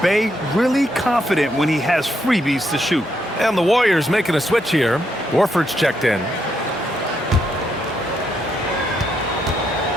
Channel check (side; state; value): both; normal; correlation 0.78